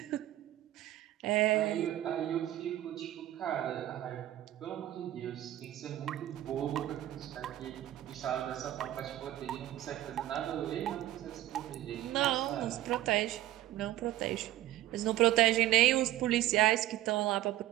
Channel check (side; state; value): left; quieter; 14.2 dB